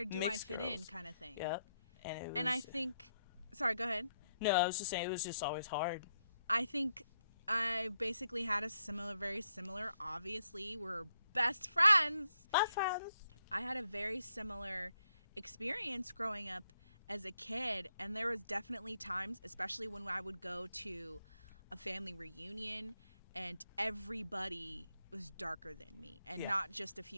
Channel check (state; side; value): inverted; both; correlation -0.78